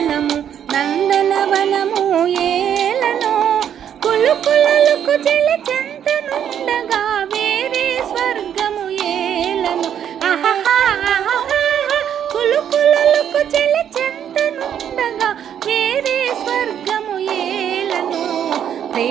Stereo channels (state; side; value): quieter; left; 9.3 dB